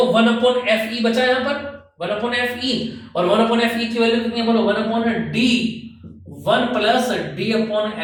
1 अपॉन एफ ई बचा यहां पर, 1 अपॉन एफ ई, और 1 अपॉन एफ ई की वैल्यू कितनी है बोलो, 1 upon D, 1 plus D upon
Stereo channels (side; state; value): both; identical; correlation 1.00